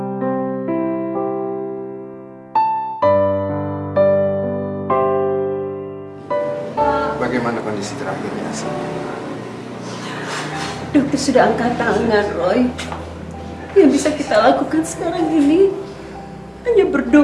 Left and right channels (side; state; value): both; identical; correlation 1.00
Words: Bagaimana kondisi terakhirnya? Dokter sudah angkat tangan, Roy. Yang bisa kita lakukan sekarang ini hanya